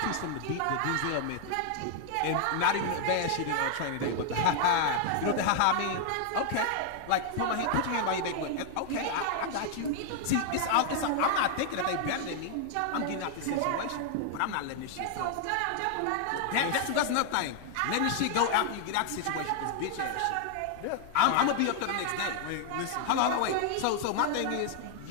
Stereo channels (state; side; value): different; both; correlation 0.00